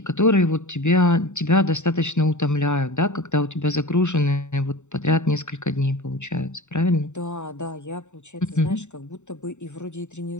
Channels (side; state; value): right; late; 0.84 ms